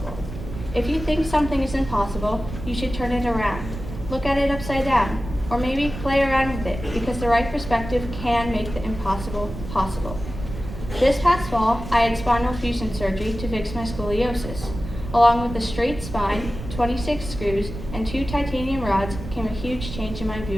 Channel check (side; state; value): right; noise; rumble, 10 dB below the sound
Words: If you think something is impossible, you should turn it around. Look at it upside down, or maybe play around with it, because the right perspective can make the impossible possible. This past fall, I had spinal fusion surgery to fix my scoliosis. Along with a straight spine, 26 screws, and 2 titanium rods came a huge change in my